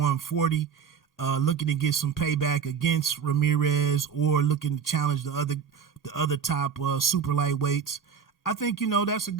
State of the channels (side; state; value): left; quieter; 7.0 dB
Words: looking to get some payback against Ramirez or looking to challenge the other top super lightweights. I think that's a